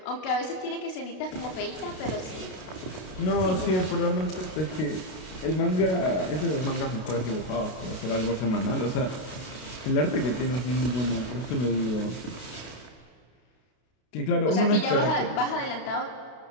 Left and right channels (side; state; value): right; late; 32 ms